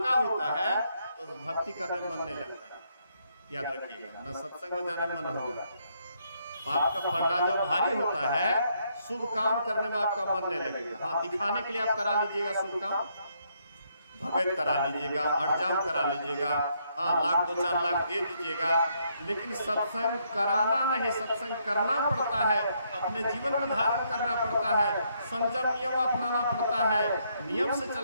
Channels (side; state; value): both; inverted; correlation -0.74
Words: होता है, तो भक्ति करने में मन नहीं लगता है। याद रखिएगा, न सत्संग में जाने में मन होगा। पाप का पलड़ा जब भारी होता है, शुभ काम करने में आपका मन नहीं लगेगा। हाँ, दिखाने के लिए आप करा लीजिएगा शुभ काम, भगत करा लीजिएगा, अड़जाम करा लीजिएगा, हाँ, लाख 2-4 लाख दे दीजिएगा, लेकिन सत्संग कराना नहीं, सत्संग करना पड़ता है, अपने जीवन में धारण करना पड़ता है, संयम नियम अपनाना पड़ता है, नियम से